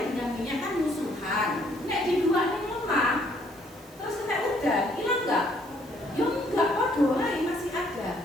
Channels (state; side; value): noise; right; hiss, 25 dB below the sound